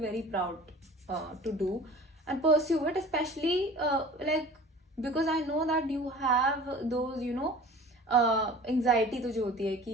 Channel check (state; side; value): normal; both; correlation 0.43